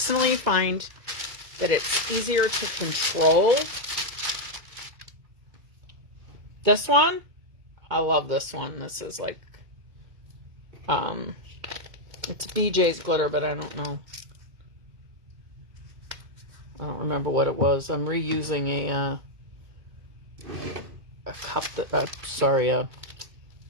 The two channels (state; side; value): late; left; 2.2 ms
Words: find that it's easier to control. This one, I love this one. This is like, it's BJ's glitter, but I don't know. I don't remember what it was. I'm reusing a cup that, a